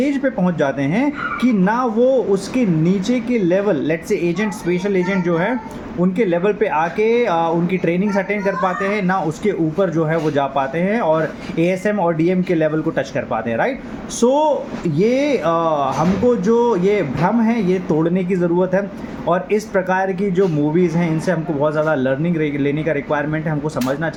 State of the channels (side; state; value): both; identical; correlation 1.00